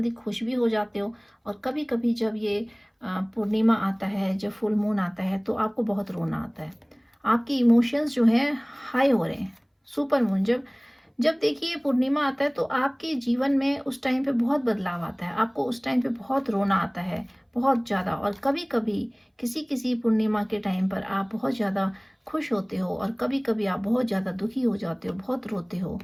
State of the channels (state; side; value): identical; both; correlation 1.00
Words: खुश भी हो जाते हो, और कभी कभी जब ये पूर्णिमा आता है, जब फुल मून आता है, तो आपको बहुत रोना आता है। आपके इमोशंस जो हैं हाई हो रहे हैं। सुपर मून जब जब देखिए पूर्णिमा आता है, तो आपके जीवन में उस टाइम पे बहुत बदलाव आता है, आपको उस टाइम पे बहुत रोना आता है, बहुत ज़्यादा। और कभी कभी किसी किसी पूर्णिमा के टाइम पर आप बहुत ज़्यादा खुश होते हो, और कभी कभी आप बहुत ज़्यादा दुखी हो जाते हो, बहुत रोते हो।